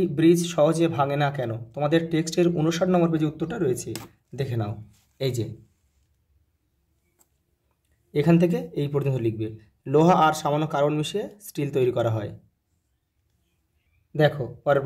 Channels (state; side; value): identical; both; correlation 1.00